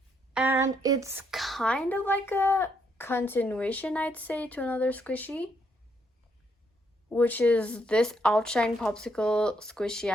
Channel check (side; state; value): both; normal; correlation 0.74